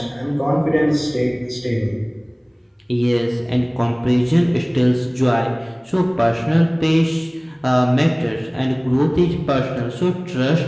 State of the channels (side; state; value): both; identical; correlation 1.00